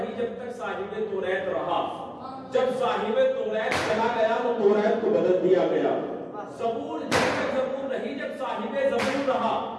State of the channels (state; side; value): identical; both; correlation 1.00